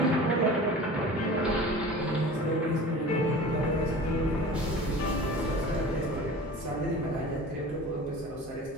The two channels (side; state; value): both; normal; correlation 0.38